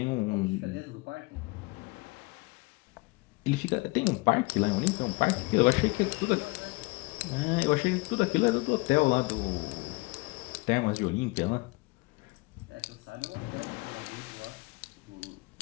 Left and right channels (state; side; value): quieter; right; 25.3 dB